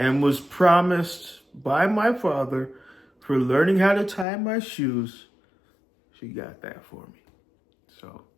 was promised by my father for learning how to tie my shoes. She got that for me. So,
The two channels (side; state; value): right; drops out; at 4.2 s